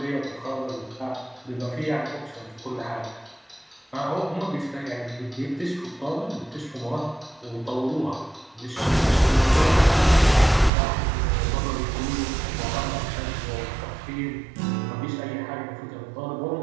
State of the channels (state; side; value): drops out; left; at 10.7 s